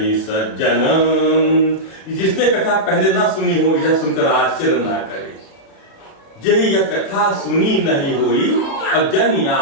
सज्जन, जिसने कथा पहले ना सुनी हो यह सुनकर आश्चर्य ना करे। यही यह कथा सुनी नहीं हुई और जन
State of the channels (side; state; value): right; late; 36 ms